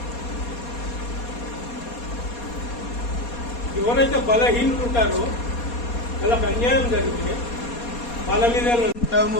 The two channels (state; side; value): late; right; 4.2 ms